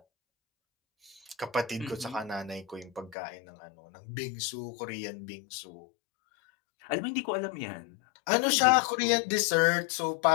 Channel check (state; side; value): drops out; right; at 3.2 s